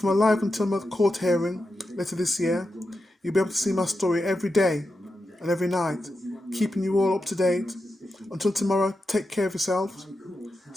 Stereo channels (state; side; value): normal; both; correlation 0.89